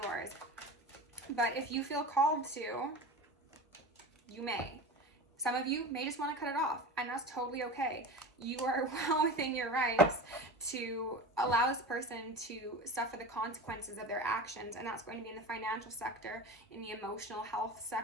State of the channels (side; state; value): both; normal; correlation 0.30